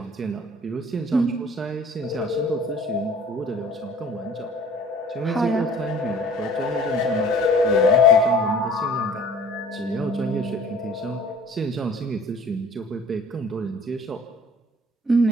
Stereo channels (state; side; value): normal; both; correlation 0.50